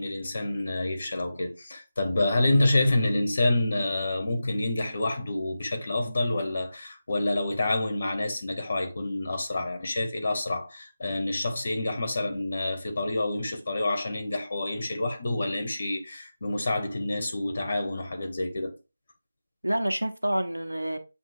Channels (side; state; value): both; inverted; correlation -0.93